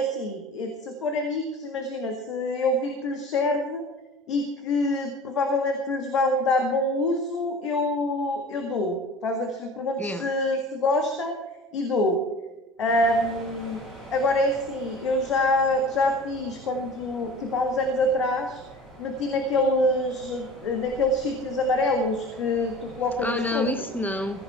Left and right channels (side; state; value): both; normal; correlation 0.40